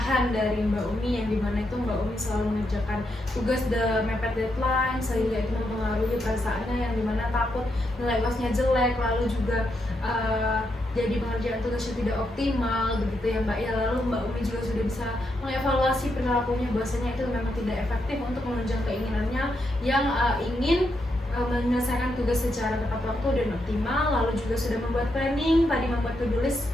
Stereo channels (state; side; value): normal; both; correlation 0.81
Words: dari Mbak Umi, yang dimana itu Mbak Umi selalu mengerjakan tugas mepet deadline, sehingga itu mempengaruhi perasaannya, yang dimana takut nilai UASnya jelek, lalu juga jadi pengerjaan tugasnya tidak optimal begitu ya Mbak ya. Lalu Mbak Umi juga sudah bisa mengevaluasi perilakunya, bahwasanya itu memang tidak efektif untuk menunjang keinginannya yang ingin menyelesaikan tugas secara tepat waktu dan optimal. Lalu juga sudah membuat planning, tadi membuat to-do list